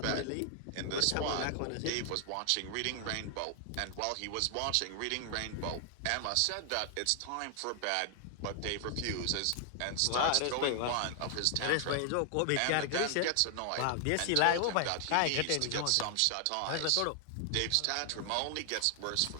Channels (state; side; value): different; both; correlation 0.00